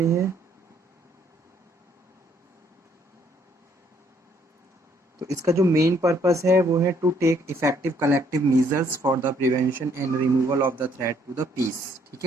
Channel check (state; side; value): normal; both; correlation 0.66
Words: है। तो इसका जो मेन पर्पस है वो है to take effective collective measures for the prevention and removal of the threat to the peace, ठीक